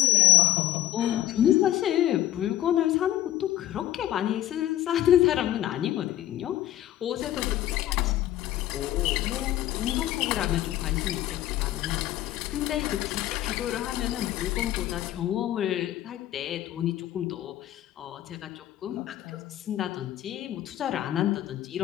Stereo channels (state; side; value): quieter; right; 13.4 dB